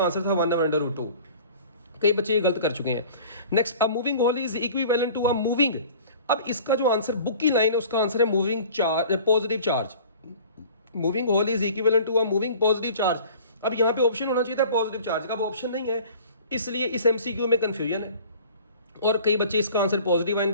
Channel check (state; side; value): inverted; both; correlation -0.46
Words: आंसर था 1/√2। कई बच्चे ये गलत कर चुके हैं। Next, a moving hole is equivalent to a moving. अब इसका जो आंसर बुक की लाइन है उसका आंसर है moving charge, positive charge. Moving hole is equivalent to a moving positive charge. अब यहाँ पे ऑप्शन होना चाहिए था पॉजिटिव चार्ज का, वो ऑप्शन नहीं है, इसलिए इस एमसीक्यू में कंफ्यूजन है। और कई बच्चे इसका आंसर पॉजिटिव आयन